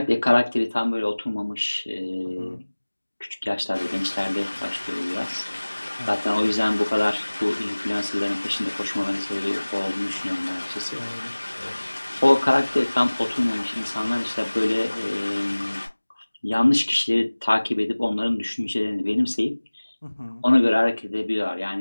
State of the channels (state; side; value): inverted; both; correlation -1.00